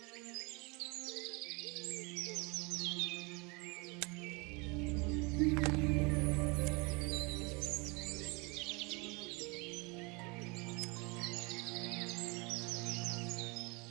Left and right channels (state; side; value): quieter; left; 28.4 dB